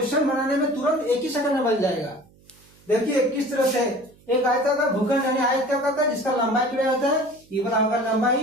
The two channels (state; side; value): noise; right; hum, 29 dB below the sound